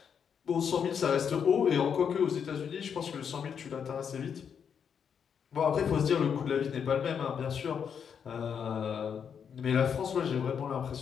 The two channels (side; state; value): right; quieter; 7.3 dB